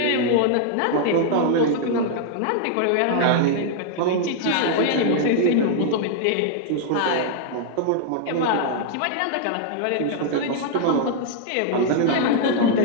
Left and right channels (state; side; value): different; both; correlation -0.01